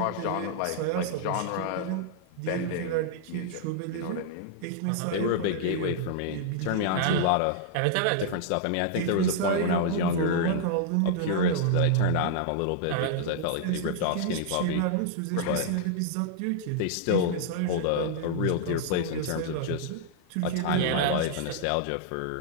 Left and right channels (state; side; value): different; both; correlation -0.01